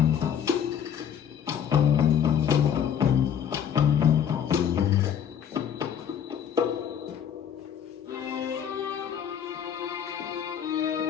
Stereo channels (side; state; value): right; quieter; 8.7 dB